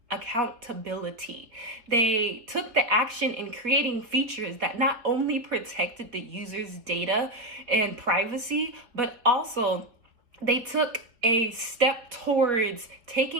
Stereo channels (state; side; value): late; left; 4.1 ms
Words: accountability. They took the action in creating features that not only protected the user's data and privacy, but also they took a step towards